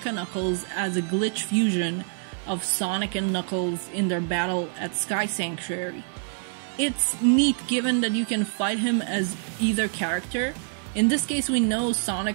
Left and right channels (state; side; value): silent; left; 61 dB below the other